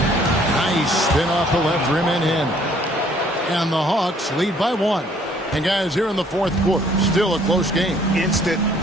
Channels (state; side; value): normal; both; correlation 0.61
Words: spin off the left rim and in. And the Hawks lead by 1. And guys, here in the fourth quarter, still a close game. Instant